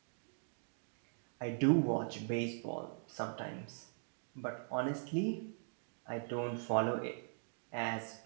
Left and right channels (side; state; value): left; silent; digital silence